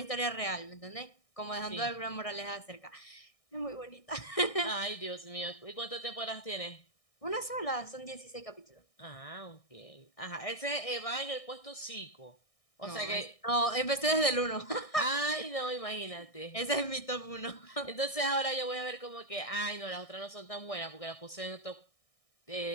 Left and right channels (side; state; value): right; late; 1.6 ms